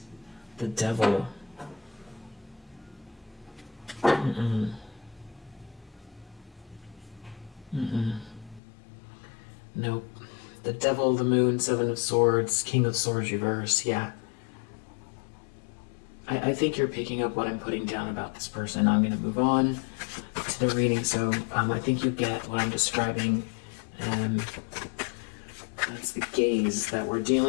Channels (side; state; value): right; drops out; at 8.6 s